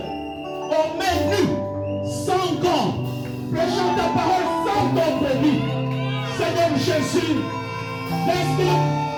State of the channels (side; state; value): both; identical; correlation 1.00